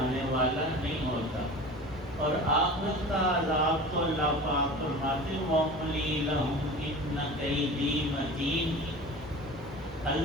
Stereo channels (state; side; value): normal; both; correlation 0.36